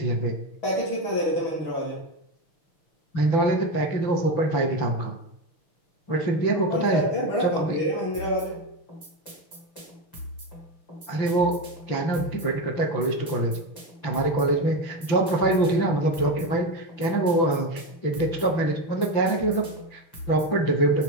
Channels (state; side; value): late; right; 6.0 ms